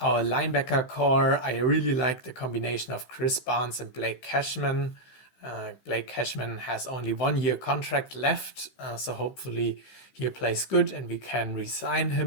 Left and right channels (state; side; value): late; right; 16 ms